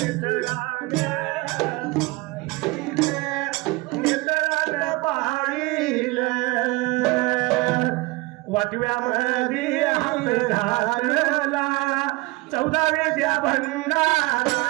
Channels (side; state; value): left; quieter; 23.3 dB